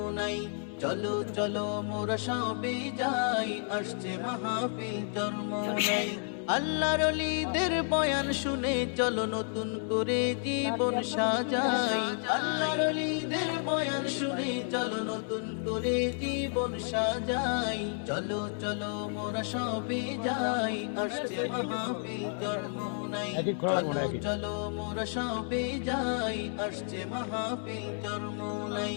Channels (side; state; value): right; silent; 57 dB below the other